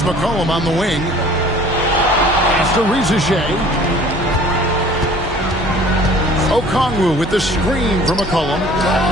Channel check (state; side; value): normal; both; correlation 0.50